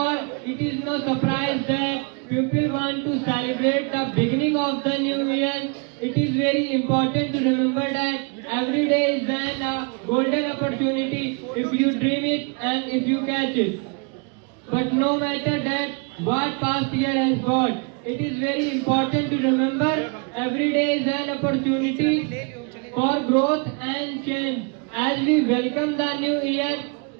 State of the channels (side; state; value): left; quieter; 35.2 dB